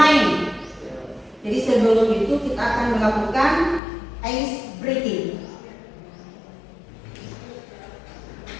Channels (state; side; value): drops out; right; at 3.8 s